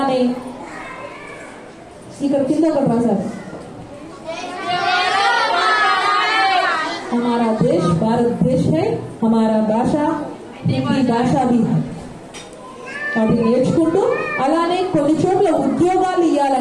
ఇక్కడ కింద ఒకటి రాశారు, हमारा देश भारत देश है, हमारा भाषा हिंदी भाषा भी है. వాటిని నేర్చుకుంటూ అలానే కొన్ని చోట్ల ఉద్యోగాలు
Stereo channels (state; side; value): identical; both; correlation 1.00